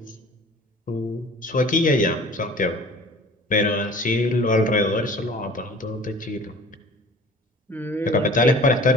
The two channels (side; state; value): both; normal; correlation 0.45